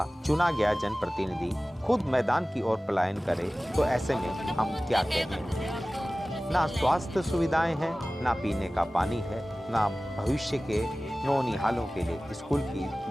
चुना गया जनप्रतिनिधि खुद मैदान की ओर पलायन करे, तो ऐसे में हम क्या कहें। ना स्वास्थ्य सुविधाएं हैं, ना पीने का पानी है, ना भविष्य के नौनिहालों के लिए स्कूल की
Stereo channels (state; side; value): normal; both; correlation 0.97